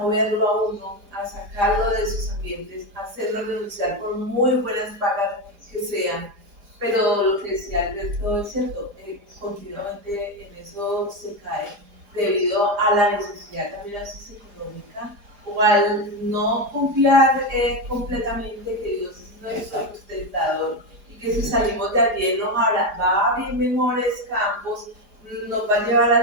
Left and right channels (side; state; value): left; late; 4.9 ms